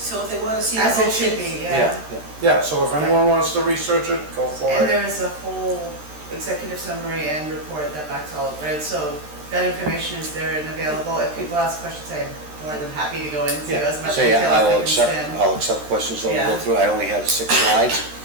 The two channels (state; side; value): late; left; 13 ms